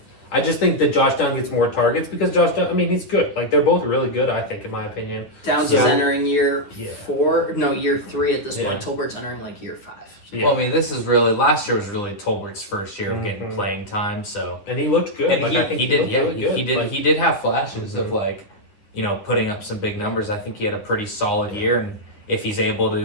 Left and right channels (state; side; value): late; right; 9.6 ms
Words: I just think that Josh Downs gets more targets because Josh Downs, I mean, he's good. Like, they're both really good, I think, in my opinion. Downs Yeah. is entering year Yeah. year 3 at this Yeah. point. Tolbert's entering like year 5. Yeah. Well, I mean, this is really last year was really Tolbert's first year of getting Mhm. playing time, so And he looked good. and like, I think he did looked yeah really good. he did Like, he did have flashes of Mhm. like, you know, putting up some big numbers. I think he had a pretty solid year, and if he's able